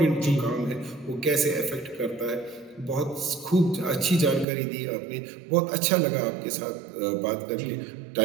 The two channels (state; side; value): drops out; left; at 4.5 s